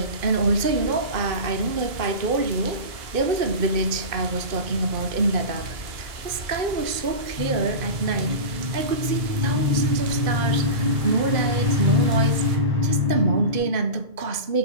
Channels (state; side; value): late; left; 2.5 ms